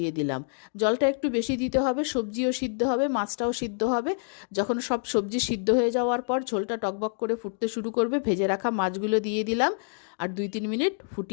দিলাম। জলটা একটু বেশি দিতে হবে, সবজিও সিদ্ধ হবে, মাছটাও সিদ্ধ হবে। যখন সব সবজি সিদ্ধ হয়ে যাওয়ার পর ঝোলটা টকবক করে ফুটতে শুরু করবে, ভেজে রাখা মাছগুলো দিয়ে দিলাম আর 2-3 মিনিট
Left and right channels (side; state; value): right; silent; digital silence